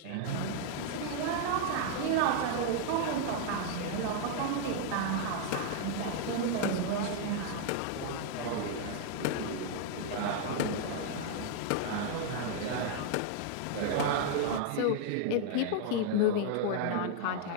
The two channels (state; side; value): different; both; correlation 0.00